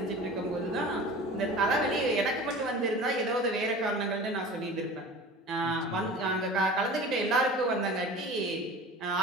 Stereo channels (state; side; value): normal; both; correlation 0.37